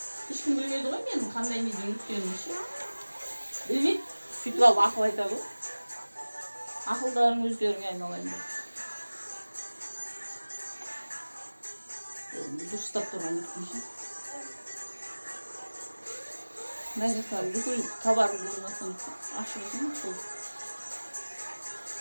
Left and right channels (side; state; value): both; inverted; correlation -1.00